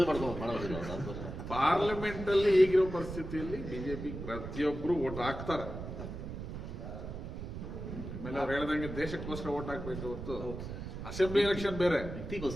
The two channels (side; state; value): right; noise; rumble, 8 dB below the sound